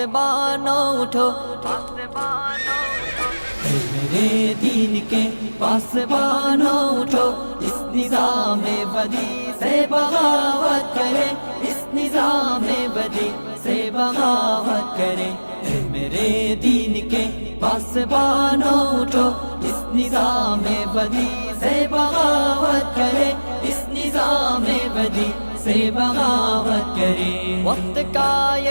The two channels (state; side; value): inverted; both; correlation -1.00